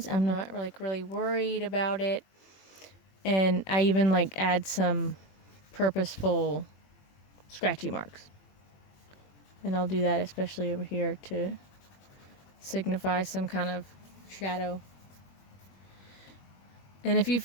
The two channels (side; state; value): right; late; 21 ms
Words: I'm not like really worried about it. And I even like add some purposeful scratchy marks. And I'll do that especially over here to signify some kind of shadow. And if you